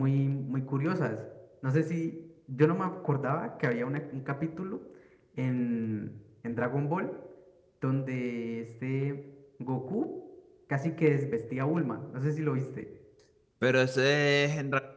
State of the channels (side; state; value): both; identical; correlation 1.00